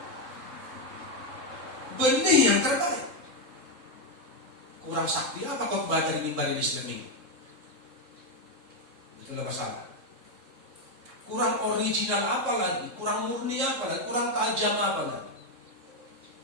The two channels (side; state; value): left; late; 3.7 ms